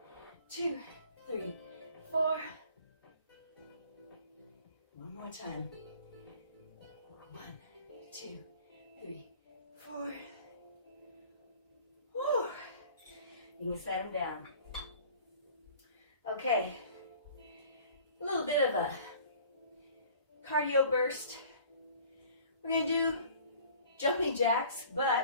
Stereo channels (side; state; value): both; inverted; correlation -0.49